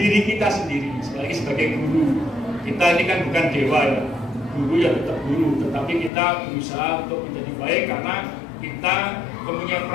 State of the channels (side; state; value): right; drops out; at 6.1 s